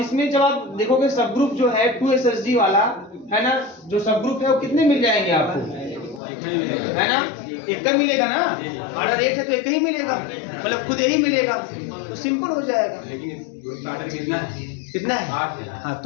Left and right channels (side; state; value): right; drops out; at 6.2 s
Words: जब आप देखोगे सब ग्रुप जो है 2 SSG वाला, है ना, जो सब ग्रुप है वो कितने मिल जाएंगे आपको, है ना, एक का मिलेगा ना। ऑर्डर 8 है तो एक ही मिलेगा, मतलब खुद यही मिलेगा, तो सिंपल हो जाएगा। लेकिन इस ग्रुप का ऑर्डर कितना है, कितना है, 8 है। हाँ